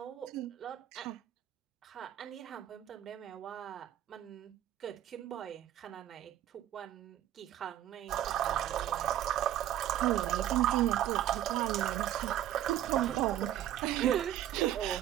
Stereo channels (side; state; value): left; quieter; 12.1 dB